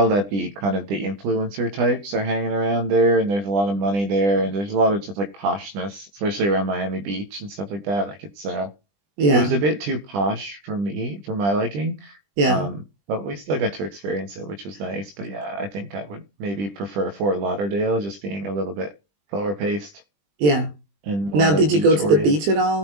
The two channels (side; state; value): left; late; 20 ms